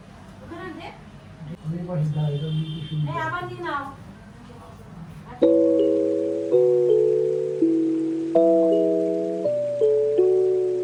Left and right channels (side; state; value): both; identical; correlation 1.00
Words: আমি পাশে দাঁড়িয়ে আবার নিয়ে নাও।